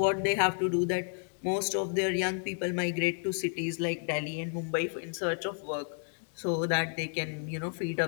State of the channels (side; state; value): right; silent; 57 dB below the other